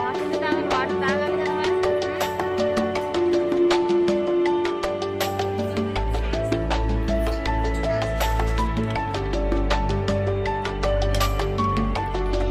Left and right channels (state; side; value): identical; both; correlation 1.00